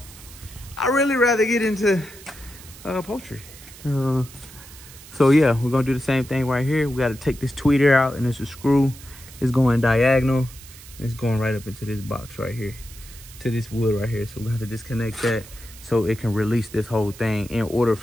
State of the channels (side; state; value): right; noise; hiss, 19 dB below the sound